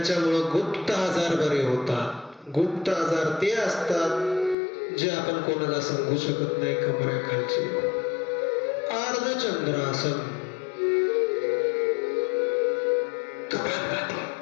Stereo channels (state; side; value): drops out; right; at 4.5 s